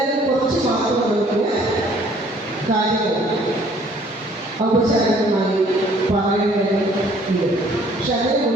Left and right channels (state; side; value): normal; both; correlation 0.58